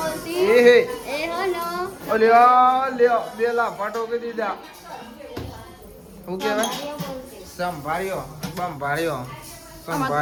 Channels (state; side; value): identical; both; correlation 1.00